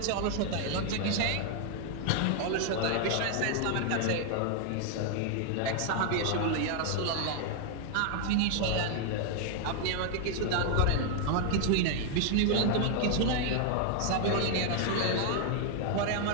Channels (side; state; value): both; different; correlation 0.00